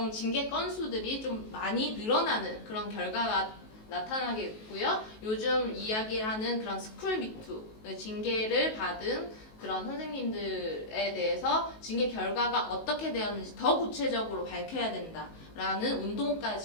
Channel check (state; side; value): late; right; 19 ms